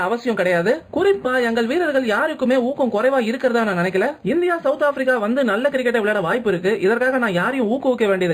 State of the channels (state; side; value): identical; both; correlation 1.00